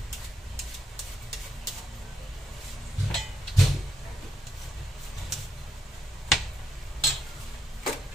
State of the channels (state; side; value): normal; both; correlation 0.79